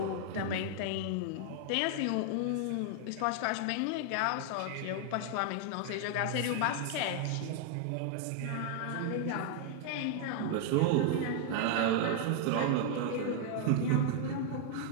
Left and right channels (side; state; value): both; different; correlation 0.00